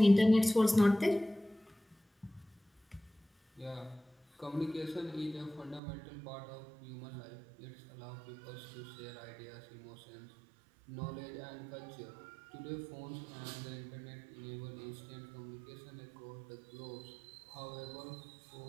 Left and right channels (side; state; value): left; drops out; at 5.8 s